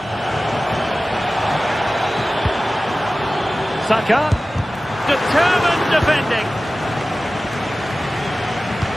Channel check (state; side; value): normal; both; correlation 0.96